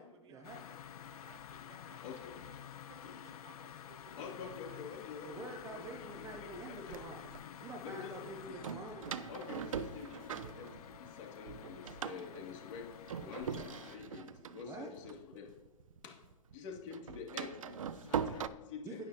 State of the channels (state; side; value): normal; both; correlation -0.09